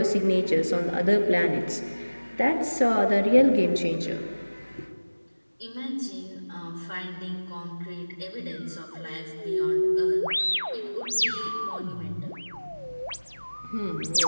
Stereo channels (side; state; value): both; inverted; correlation -1.00